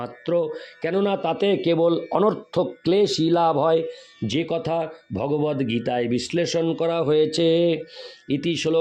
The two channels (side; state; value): both; identical; correlation 1.00